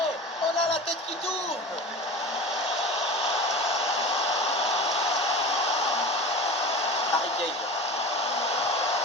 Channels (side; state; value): both; normal; correlation 0.32